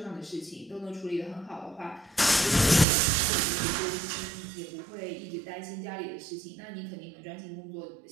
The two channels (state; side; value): drops out; left; at 2.9 s